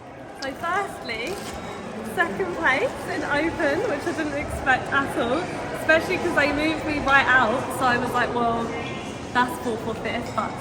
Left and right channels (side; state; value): both; identical; correlation 1.00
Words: So firstly, 2nd place in Open, which I didn't expect at all, especially because they moved me right out, so I was like, well, that's 4th or 5th, but